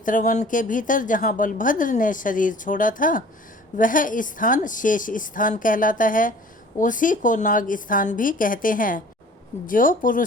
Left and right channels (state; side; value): normal; both; correlation 0.48